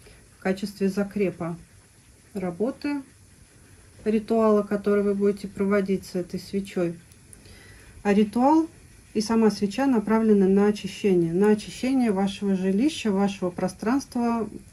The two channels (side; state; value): both; identical; correlation 1.00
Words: в качестве закрепа работы ритуала, который вы будете проводить с этой свечой. А ритуал и сама свеча направлены на очищение вашего жилища, вашего пространства,